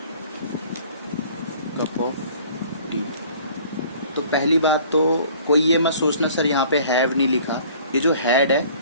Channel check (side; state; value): both; inverted; correlation -0.52